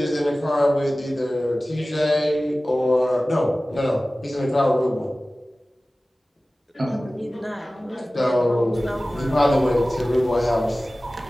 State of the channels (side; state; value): both; normal; correlation 0.97